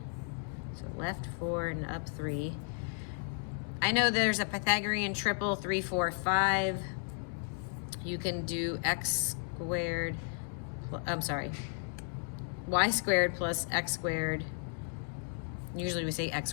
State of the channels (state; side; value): silent; right; 55 dB below the other